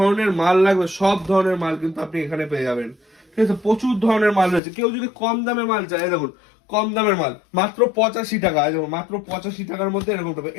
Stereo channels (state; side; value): drops out; right; at 4.6 s